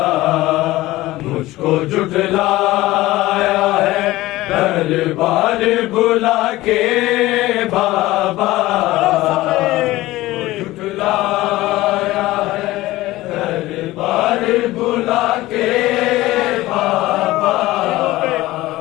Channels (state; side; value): quieter; right; 17.7 dB